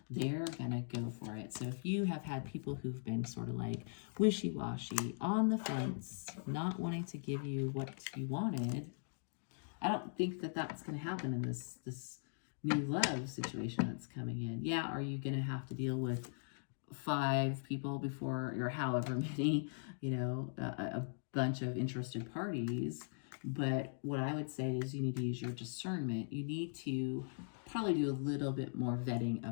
They're going to go for it. So if you have had people who've been sort of like wishy-washy, on the fence, not wanting to give you what you wanted, I don't think that that's going to happen in this new love situation that's coming in. Yeah, are you going to have to deal with 5 people before, or however many, a bunch of interested parties? But what I would say is you need to use your discernment. You need to probably do a little bit more vetting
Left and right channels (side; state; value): right; silent; digital silence